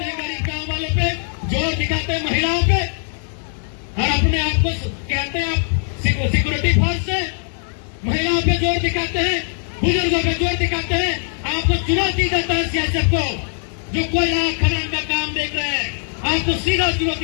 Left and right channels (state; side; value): silent; right; 61 dB below the other